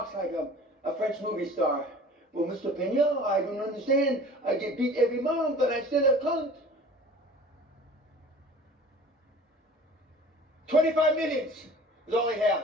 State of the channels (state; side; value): normal; both; correlation 0.44